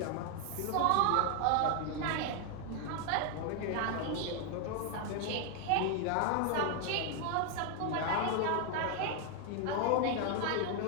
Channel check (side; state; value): both; different; correlation 0.00